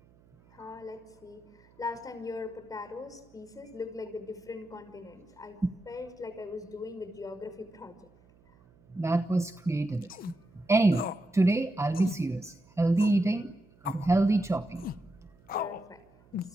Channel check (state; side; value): noise; right; hum, 28 dB below the sound